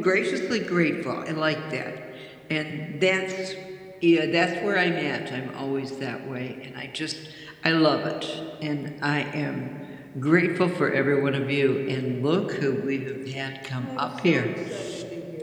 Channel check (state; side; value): identical; both; correlation 1.00